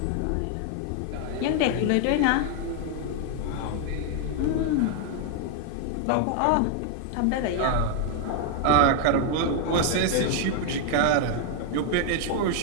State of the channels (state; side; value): different; both; correlation 0.00